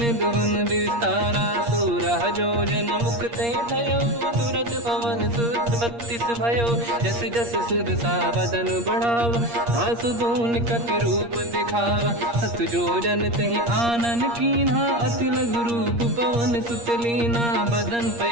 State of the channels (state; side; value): late; left; 8.5 ms